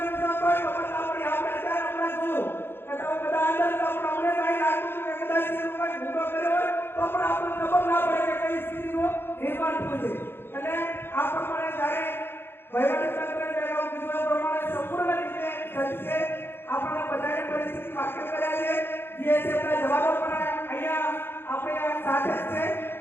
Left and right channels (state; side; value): late; right; 0.11 ms